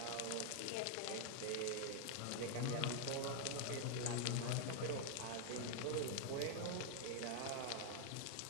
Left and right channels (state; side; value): different; both; correlation 0.00